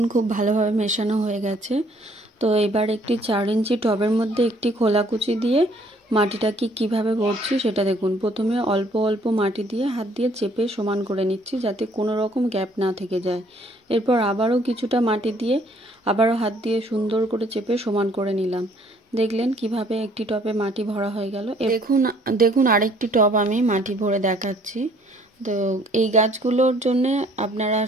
খুব ভালোভাবে মেশানো হয়ে গেছে। তো এবার একটি 4 ইঞ্চি টবের মধ্যে একটি খোলাকুচি দিয়ে মাটিটাকে কিভাবে ভরছি সেটা দেখুন। প্রথমে অল্প অল্প মাটি দিয়ে হাত দিয়ে চেপে সমান করে নিচ্ছি যাতে কোনো রকম গ্যাপ না থেকে যায়। এরপর আবারও কিছুটা মাটি দিয়ে আবারও হাত দিয়ে সুন্দর করে চেপে সমান করে নিলাম। দেখলেন কিভাবে একটি টবে মাটি ভরা হয়ে গেল। দেখুন আরেকটি টব আমি মাটি ভরে দেখাচ্ছি। তো এই গাছগুলোর জন্য আপনারা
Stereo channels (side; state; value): both; normal; correlation 0.61